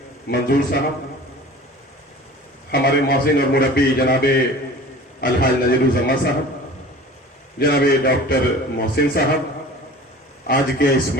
मंजूर साहब, हमारे मौसिन और मुरब्बी जनाब अलहाज नजीरुज़्ज़मा साहब, जनाब डॉक्टर मोहसिन साहब, आज के इस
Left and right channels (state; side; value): normal; both; correlation 0.42